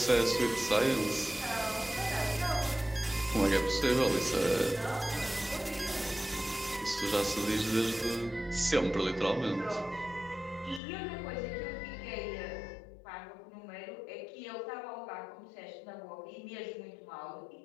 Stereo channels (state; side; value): drops out; right; at 10.8 s